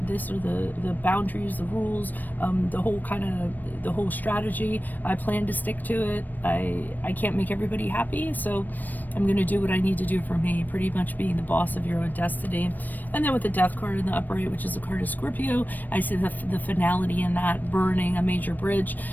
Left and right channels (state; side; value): late; right; 0.088 ms